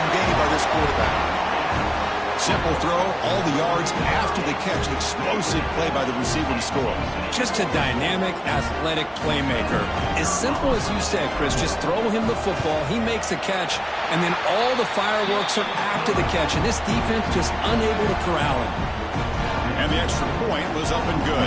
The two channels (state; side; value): identical; both; correlation 1.00